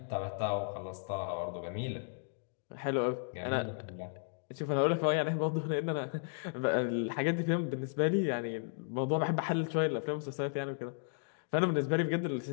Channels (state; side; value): silent; right; digital silence